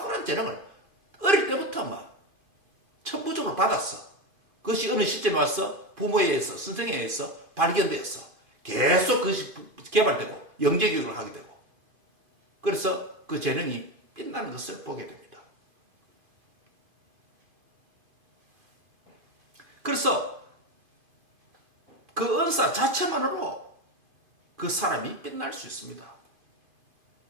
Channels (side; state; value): left; late; 2.5 ms